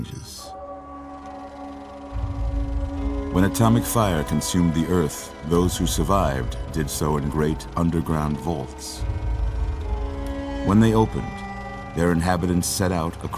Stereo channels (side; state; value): both; identical; correlation 1.00